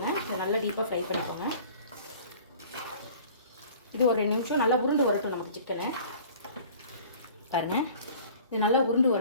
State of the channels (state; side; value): inverted; both; correlation -0.47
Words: இதை நல்லா டீப்பாக ஃப்ரை பண்ணிக்கோங்க. இது ஒரு 2 நிமிஷம் நல்லா உருண்டு வரட்டும் நமக்கு சிக்கனு. பாருங்கள், இது நல்லா உருண்டு